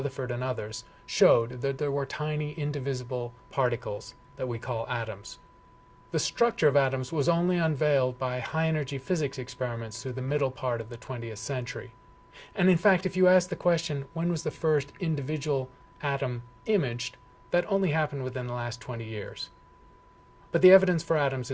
and others showed that there were tiny indivisible particles that we call atoms. The structure of atoms was only unveiled by high-energy physics experiments through the middle part of the 20th century. And in fact, if you ask the question, when was the first individual atom imaged, that only happened within the last 20 years. But the evidence for atoms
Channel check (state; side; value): identical; both; correlation 1.00